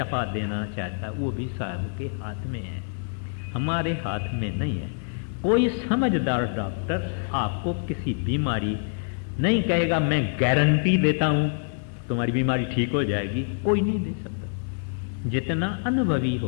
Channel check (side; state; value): right; silent; digital silence